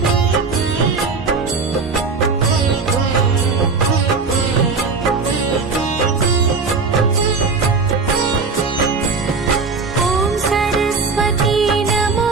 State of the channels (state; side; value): quieter; left; 4.5 dB